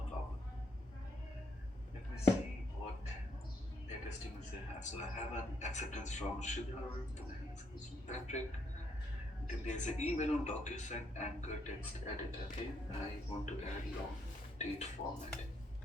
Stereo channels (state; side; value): normal; both; correlation 0.75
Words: problem. Let me see what latest emails I have. So I have an acceptance from Shidhar, then I have acceptance from Patrick. Then there's an email on DocuSign anchor text edit. Okay, I want to add long date format.